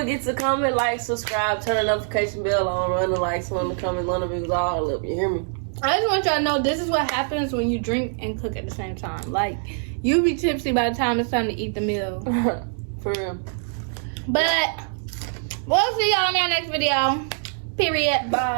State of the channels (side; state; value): left; silent; digital silence